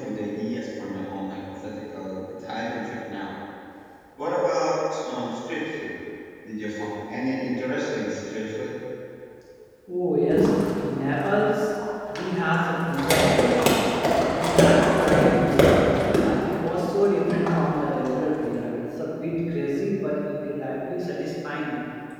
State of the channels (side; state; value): both; identical; correlation 1.00